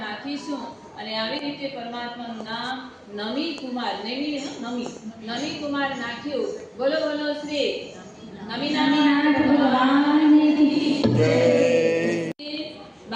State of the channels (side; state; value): both; identical; correlation 1.00